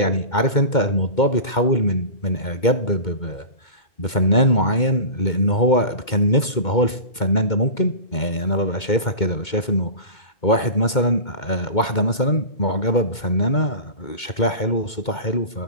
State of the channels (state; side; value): late; right; 2.2 ms